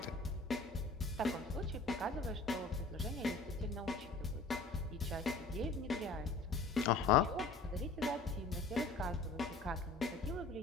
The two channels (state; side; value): quieter; right; 3.6 dB